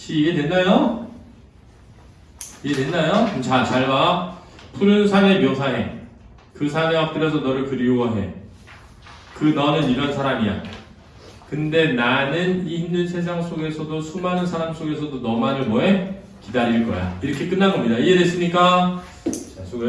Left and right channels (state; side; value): identical; both; correlation 1.00